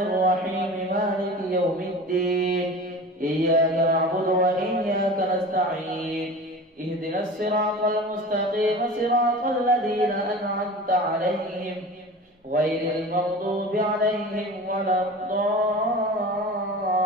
الرحيم مالك يوم الدين إياك نعبد وإياك نستعين اهدنا الصراط المستقيم صراط الذين أنعمت عليهم غير المغضوب عليهم ولا الضالين.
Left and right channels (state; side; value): normal; both; correlation 0.36